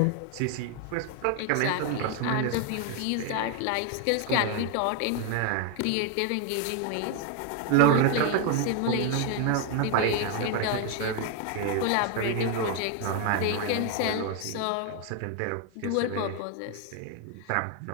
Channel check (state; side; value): different; both; correlation 0.01